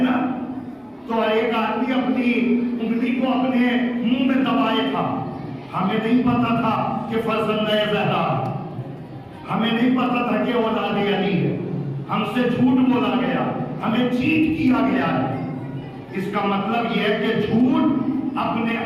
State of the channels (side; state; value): both; identical; correlation 1.00